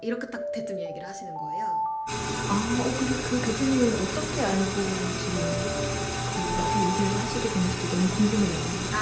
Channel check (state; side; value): identical; both; correlation 1.00